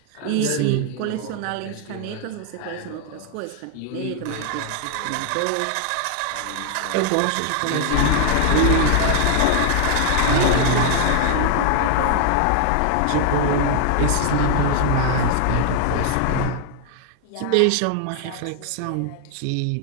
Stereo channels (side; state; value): both; different; correlation 0.00